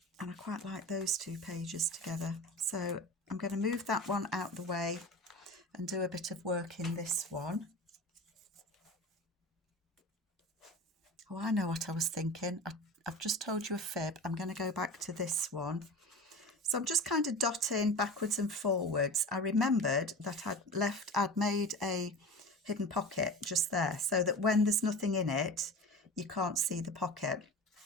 And I quite like those 2 pages together. So I'm going to move that one out the way and do a bit of work in this one. Oh, I know what I was thinking. I've just told you a fib. I'm going to go back to this one. So I'm just kind of dotting backwards and forwards. I remembered that I'd made a hidden pocket just there so that when there's nothing in it, you can't see the pocket.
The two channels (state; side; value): normal; both; correlation 0.33